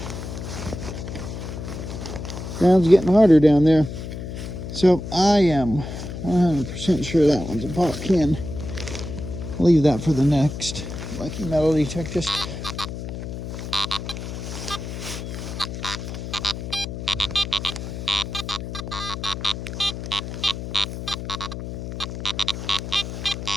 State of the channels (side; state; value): left; noise; hum, 7 dB below the sound